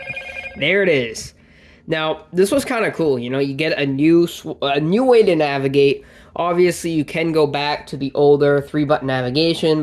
There it is. Now, this was kind of cool. You get a new way to navigate. Obviously, you can go back to the older 3-button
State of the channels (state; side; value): identical; both; correlation 1.00